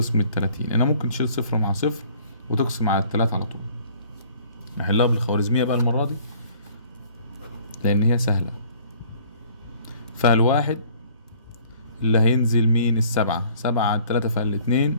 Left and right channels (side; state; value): both; inverted; correlation -0.55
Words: 30. أنا ممكن تشيل صفر مع صفر وتقسم على 3 على طول. نحلها بالخوارزمية بقى المرة دي لأن هي سهلة. فالواحد اللي هينزل مين؟ 7 على 3 فعل 2،